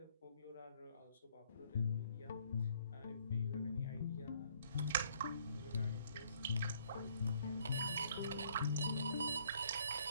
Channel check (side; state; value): both; inverted; correlation -0.64